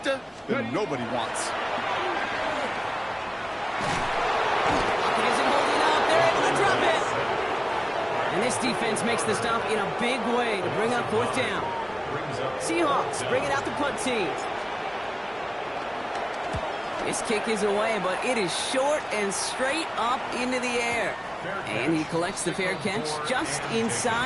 that nobody wants. It isn't holding up. They're able to drop it. And this defense makes the stop in a big way to bring up fourth down. Seahawks bring it out the punt team. This kick is away, but it is short and straight up into the air. And he collects the fair catch just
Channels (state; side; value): identical; both; correlation 1.00